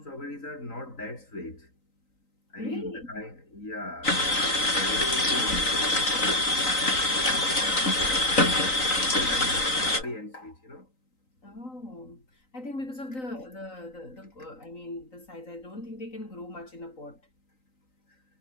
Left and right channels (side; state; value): right; late; 3.9 ms